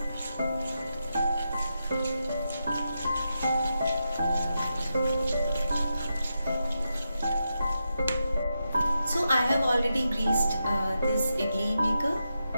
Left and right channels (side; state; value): both; inverted; correlation -0.86